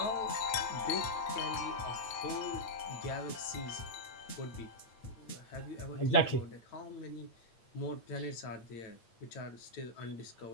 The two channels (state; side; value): late; right; 8.5 ms